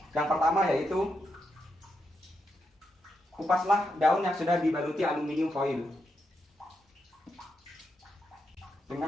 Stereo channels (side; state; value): both; normal; correlation 0.83